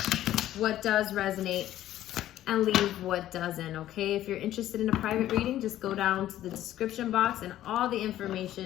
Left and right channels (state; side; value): quieter; right; 13.1 dB